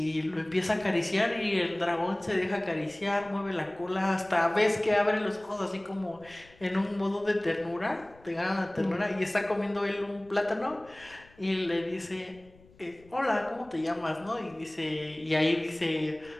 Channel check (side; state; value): left; noise; rumble, 26 dB below the sound